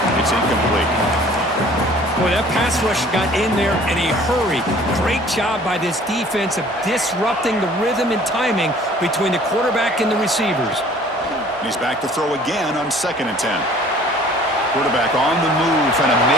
It's incomplete. Boy, that pass rush got in there in a hurry. Great job by this defense of disrupting the rhythm and timing between the quarterback and the receivers. He's back to throw again on 2nd and 10. Quarterback on the move, trying to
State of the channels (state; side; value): normal; both; correlation 0.52